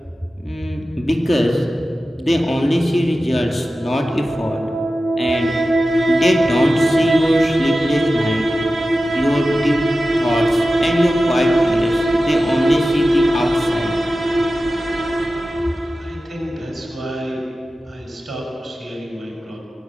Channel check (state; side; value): normal; both; correlation 0.94